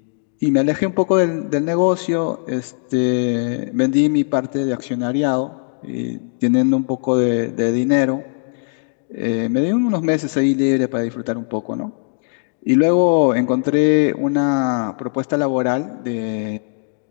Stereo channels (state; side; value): silent; right; digital silence